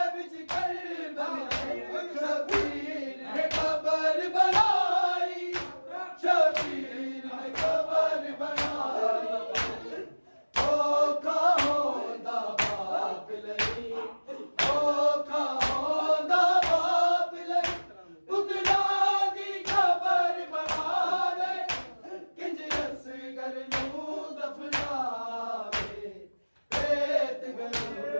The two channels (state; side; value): inverted; both; correlation -1.00